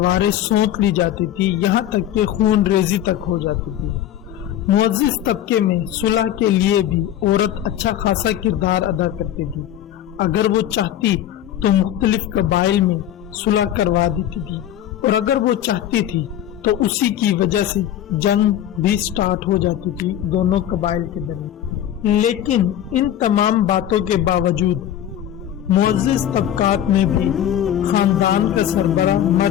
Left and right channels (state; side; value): quieter; right; 11.2 dB